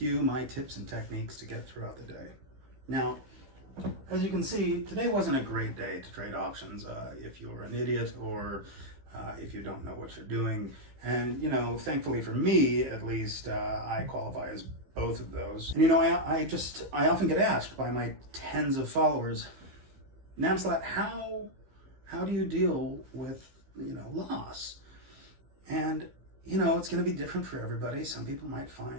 you my tips and techniques to get throughout the day. Now, as you can see, today wasn't a great day to trade options if you're an idiot or if you don't know what you're doing. And, you know, thankfully for me, at least, I qualify as both of those. And, you know, I often get asked by my tens of followers, Namsalat, how do you deal with, you know, loss? And, you know, it's going to be different for everybody. Some people might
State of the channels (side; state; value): left; late; 15 ms